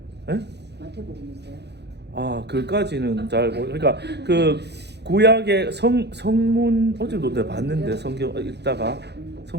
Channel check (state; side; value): late; left; 0.49 ms